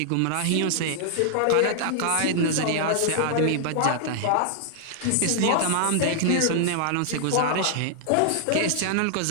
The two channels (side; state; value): both; different; correlation -0.01